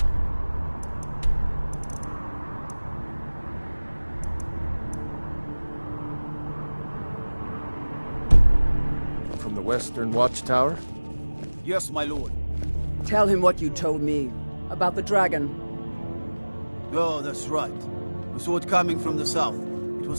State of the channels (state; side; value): inverted; both; correlation -1.00